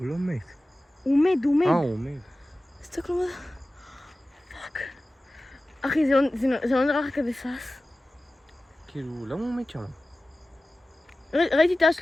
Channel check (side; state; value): both; normal; correlation 0.96